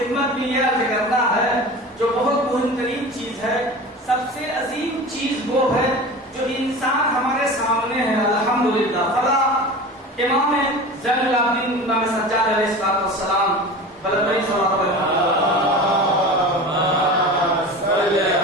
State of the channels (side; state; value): both; normal; correlation 0.34